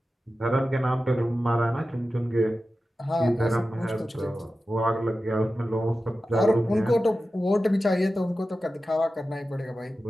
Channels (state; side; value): normal; both; correlation 0.94